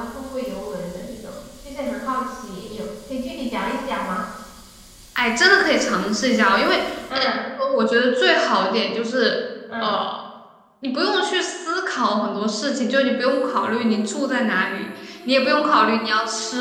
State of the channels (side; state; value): both; identical; correlation 1.00